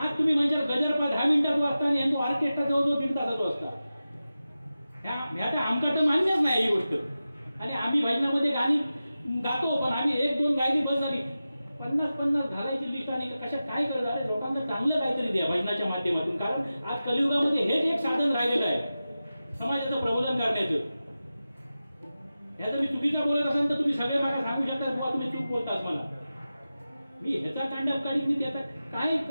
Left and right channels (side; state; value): both; inverted; correlation -0.94